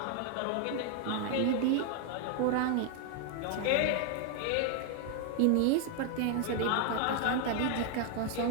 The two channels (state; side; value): different; both; correlation 0.00